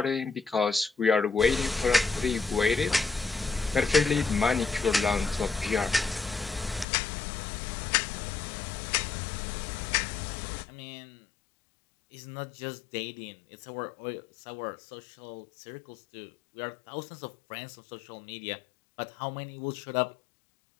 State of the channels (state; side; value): drops out; right; at 6.9 s